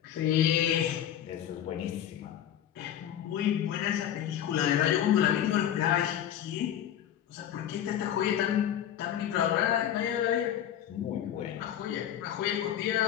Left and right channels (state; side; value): quieter; right; 10.5 dB